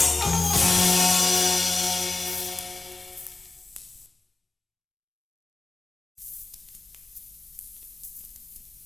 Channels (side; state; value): right; quieter; 3.3 dB